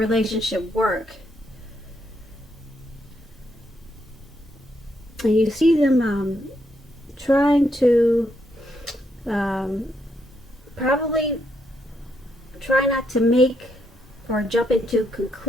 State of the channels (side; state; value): both; normal; correlation 0.77